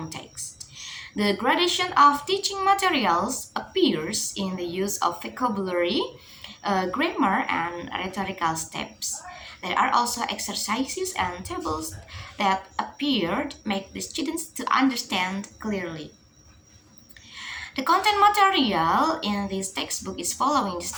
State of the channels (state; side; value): identical; both; correlation 1.00